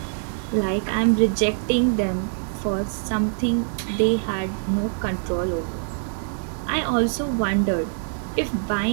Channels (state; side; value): silent; left; digital silence